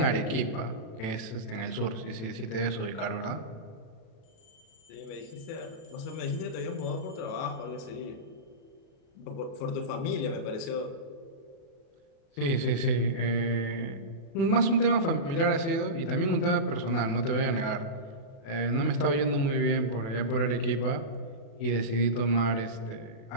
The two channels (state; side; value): late; right; 36 ms